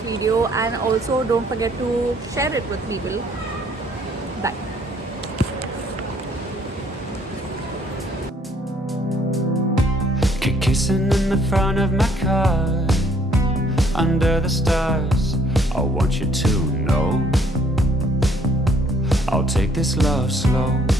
video, and also don't forget to share it with people. Bye. Kissing in the front of my car, under the stars. I want you to know I'll take this love slow.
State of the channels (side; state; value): both; normal; correlation 0.63